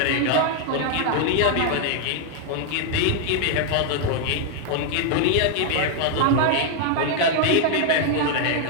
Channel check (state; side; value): different; both; correlation 0.00